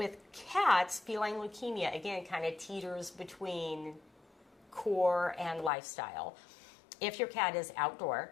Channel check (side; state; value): right; drops out; at 5.7 s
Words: cats, feline leukemia, again, kind of teeters between core and lifestyle. If your cat is outdoor,